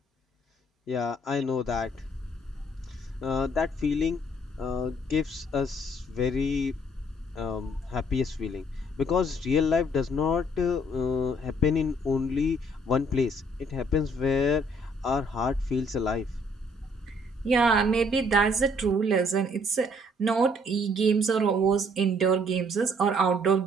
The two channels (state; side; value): normal; both; correlation 0.64